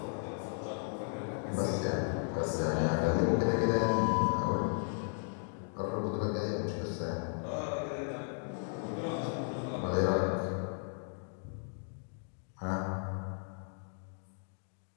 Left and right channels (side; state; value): right; silent; 54 dB below the other